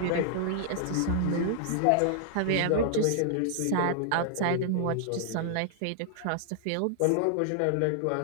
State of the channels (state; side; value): different; both; correlation -0.01